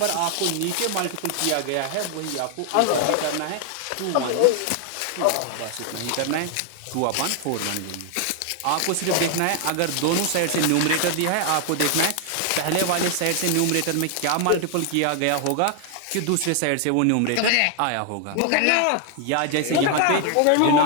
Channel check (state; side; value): different; both; correlation 0.00